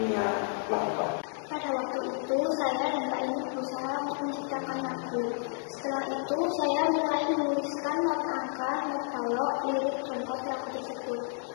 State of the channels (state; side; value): silent; right; 57 dB below the other